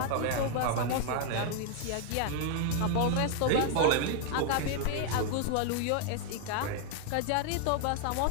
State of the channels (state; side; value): different; both; correlation 0.00